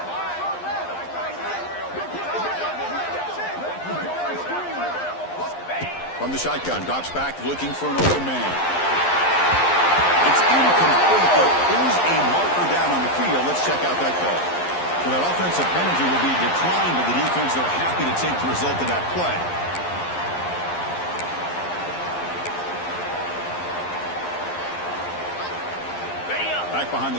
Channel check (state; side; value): late; right; 11 ms